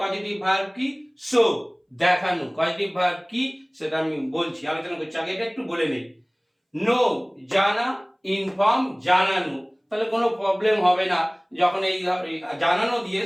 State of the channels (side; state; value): both; identical; correlation 1.00